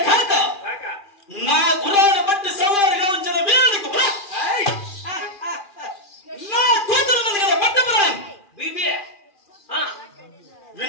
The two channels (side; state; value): right; late; 2.4 ms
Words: కాక కాక నా గుర్రాన్ని బట్టి సవారిగా ఉంచిన వీరుడికి ఏయ్! నా కూతురు ఉంది కదా పట్టపురాన్ బీబీ